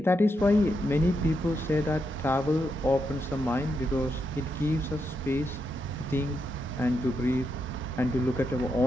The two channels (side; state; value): both; normal; correlation 0.83